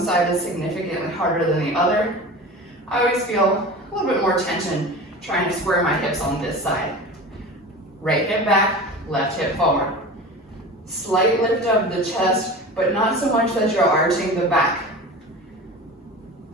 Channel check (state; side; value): normal; both; correlation 0.33